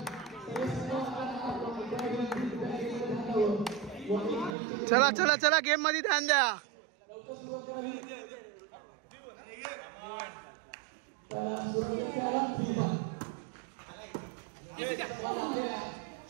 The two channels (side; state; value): left; drops out; at 4.5 s